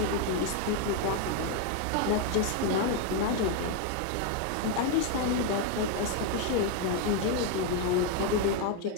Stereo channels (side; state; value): both; different; correlation 0.01